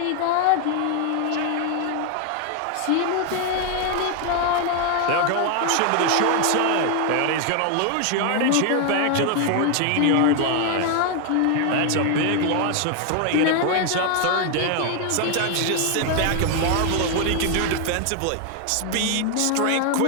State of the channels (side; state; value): both; different; correlation 0.00